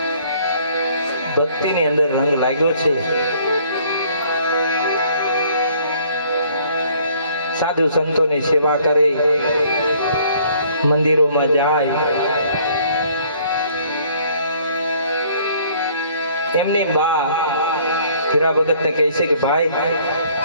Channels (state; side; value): inverted; both; correlation -0.59